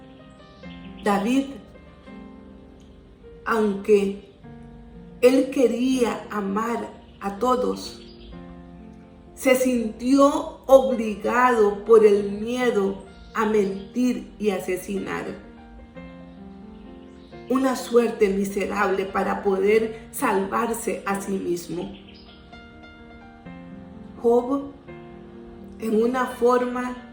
David, aunque él quería amar a todos, se sintió obligado por el miedo a mentir y asesinar. Una suerte miserable para poder salvarse a sí mismo. Job, en una forma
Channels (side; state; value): both; identical; correlation 1.00